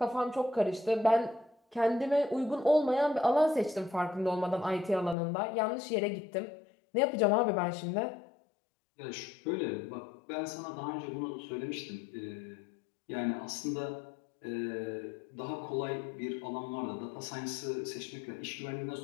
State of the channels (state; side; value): drops out; right; at 5.2 s